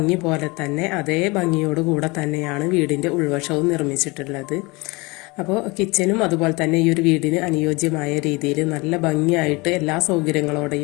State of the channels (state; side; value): quieter; right; 25.4 dB